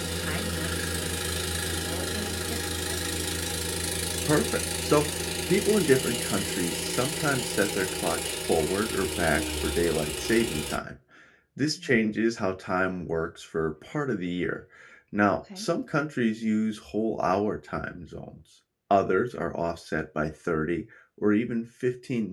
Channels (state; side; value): identical; both; correlation 1.00